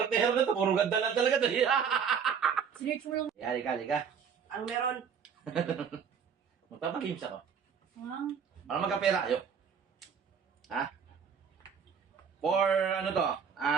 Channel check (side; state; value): left; quieter; 7.0 dB